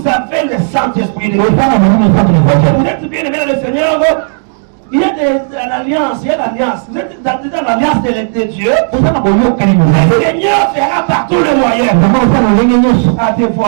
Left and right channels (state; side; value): silent; left; digital silence